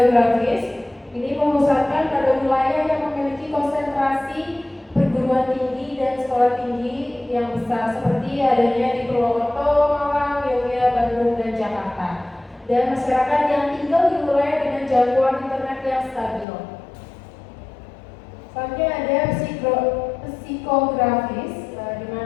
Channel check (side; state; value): right; drops out; at 16.4 s